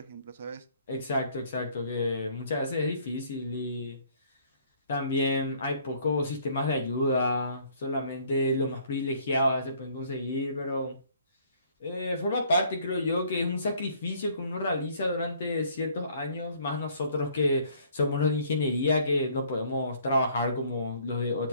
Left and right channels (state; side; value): inverted; both; correlation -0.60